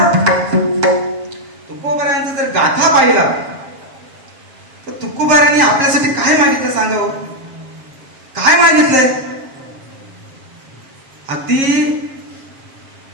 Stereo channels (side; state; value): left; late; 7.4 ms